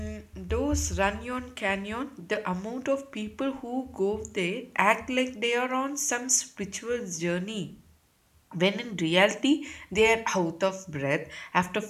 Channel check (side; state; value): both; identical; correlation 1.00